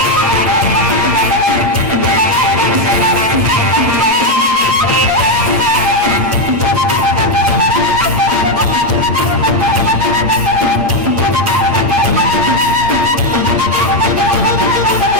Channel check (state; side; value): late; left; 8.7 ms